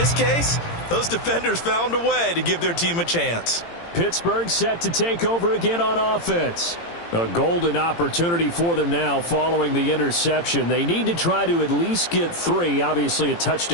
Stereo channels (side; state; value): right; late; 18 ms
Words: case, those defenders found a way to give their team a chance. Pittsburgh set to take over again on offense. A golden opportunity for them now following the interception. They need to try to at least get 3. Obviously, a